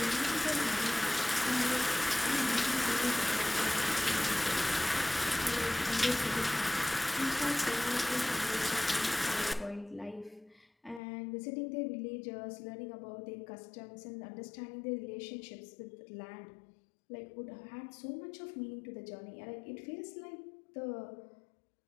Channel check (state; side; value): drops out; right; at 11.0 s